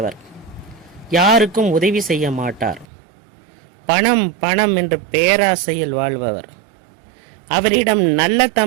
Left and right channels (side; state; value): left; drops out; at 2.9 s